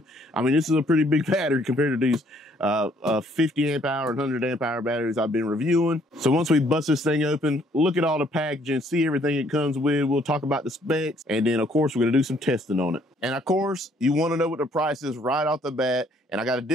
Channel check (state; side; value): normal; both; correlation 0.65